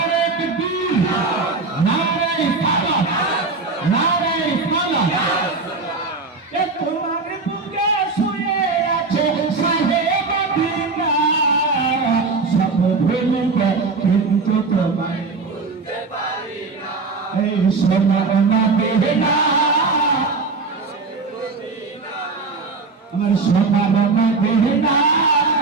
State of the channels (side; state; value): left; quieter; 4.0 dB